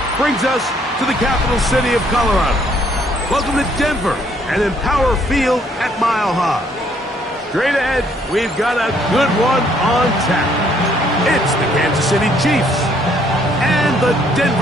brings us to the capital city of Colorado. Welcome to Denver and Empower Field at Mile High. Straight ahead, we've got a good one on tap. It's the Kansas City Chiefs and the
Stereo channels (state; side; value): normal; both; correlation 0.66